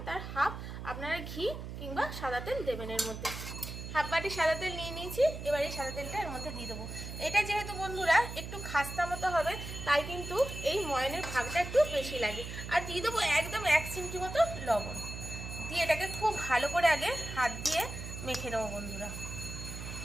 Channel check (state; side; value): noise; right; hum, 8 dB below the sound